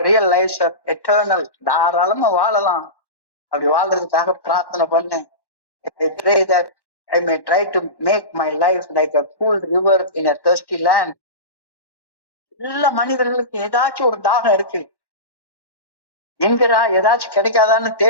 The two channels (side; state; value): right; late; 1.1 ms